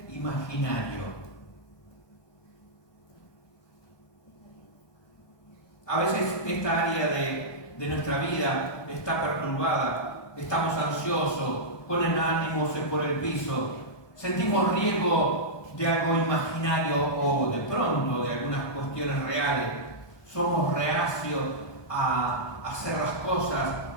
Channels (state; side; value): late; right; 1.2 ms